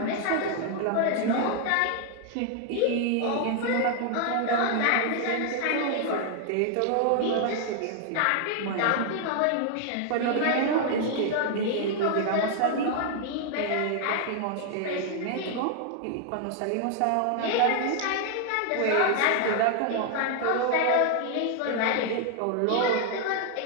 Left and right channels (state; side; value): different; both; correlation 0.00